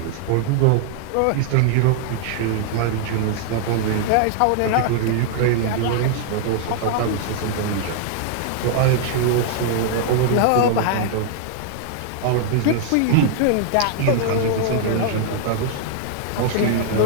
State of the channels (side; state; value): both; different; correlation -0.01